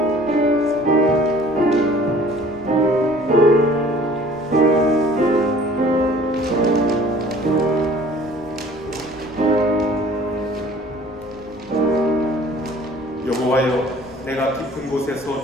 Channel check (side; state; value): left; noise; rumble, 24 dB below the sound